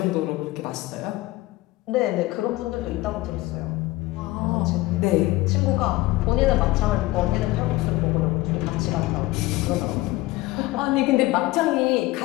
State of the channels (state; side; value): quieter; right; 18.9 dB